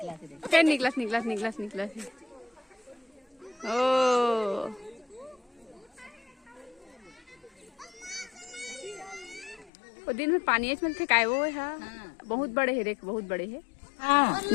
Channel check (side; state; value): right; drops out; at 9.7 s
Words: फिर निकलस ओ वो दिन में पानी में थे काय वो है बहुत बड़े है देख बहुत बड़े है। हाँ